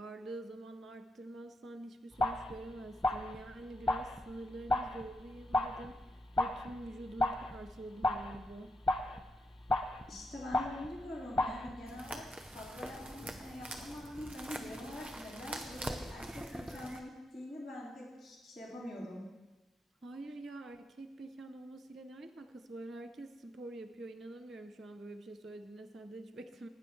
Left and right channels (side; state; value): both; normal; correlation 0.82